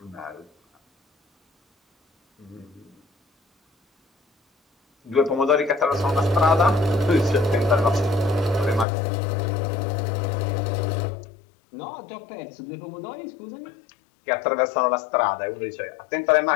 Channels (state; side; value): drops out; right; at 8.8 s